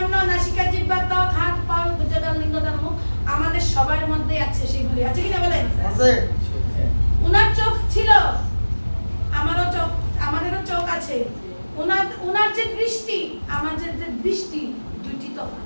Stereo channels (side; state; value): both; inverted; correlation -1.00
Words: নাসিকা, জিহ্বা, ত্বক, হাত, পা, ভুজদান, লিঙ্গদান, মুখ, আমাদের সবার মধ্যে আছে সেগুলি, আছে কিনা বলেন? আছে। ওনার চোখ ছিল, আমারও চোখ, আমাদেরও চোখ আছে। ওনার যে দৃষ্টি, আমাদের যে দৃষ্টি, দুইটি